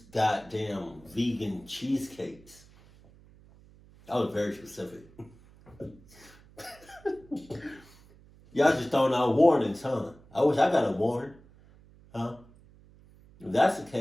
vegan cheesecakes. That was very specific. Y'all just throwing out warnings, huh? I wish I got a warning, huh? If that's the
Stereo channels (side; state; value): right; noise; hum, 25 dB below the sound